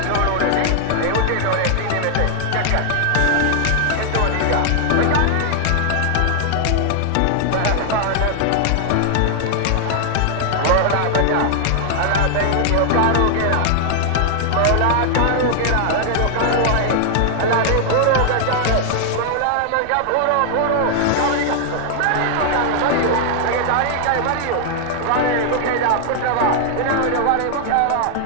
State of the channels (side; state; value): both; different; correlation 0.00